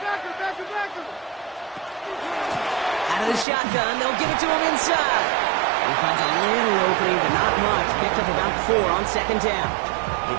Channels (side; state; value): left; drops out; at 3.5 s